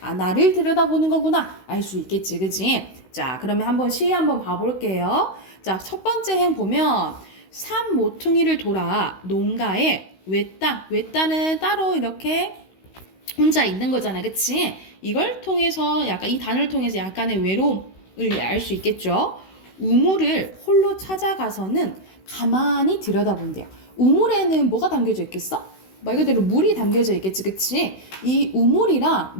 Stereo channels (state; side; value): late; right; 16 ms